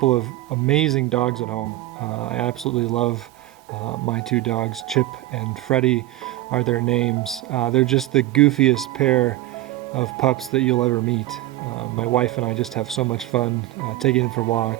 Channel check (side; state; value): left; quieter; 16.1 dB